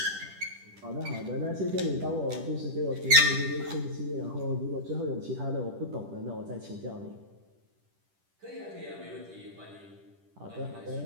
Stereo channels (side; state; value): left; late; 10 ms